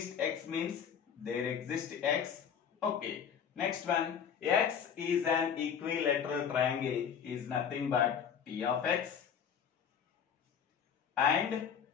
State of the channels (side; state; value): right; quieter; 7.7 dB